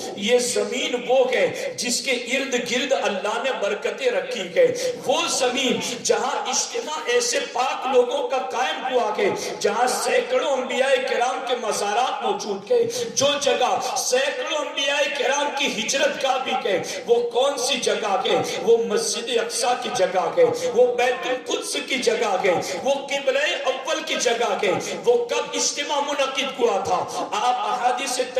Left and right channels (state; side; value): identical; both; correlation 1.00